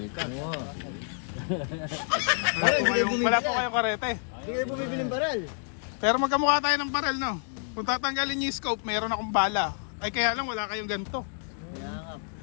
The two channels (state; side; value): silent; right; digital silence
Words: Wala po kayong karete. Hindi kayo bumibili ng baral. Pero magkamukha tayo ng barel, no? Kung tatanggalin niyo yung scope, meron akong bala. Ay, kaya lang, wala kayong ganito.